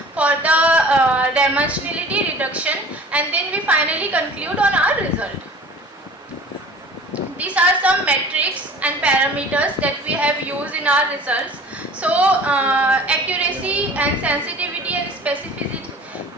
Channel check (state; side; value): normal; both; correlation 0.45